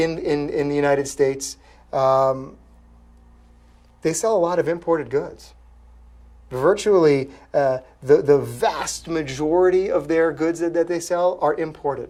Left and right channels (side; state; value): both; identical; correlation 1.00